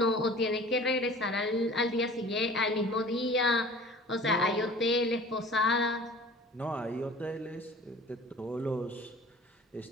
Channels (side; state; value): both; normal; correlation 0.44